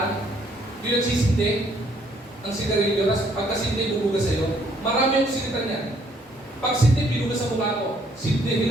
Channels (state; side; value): normal; both; correlation 0.66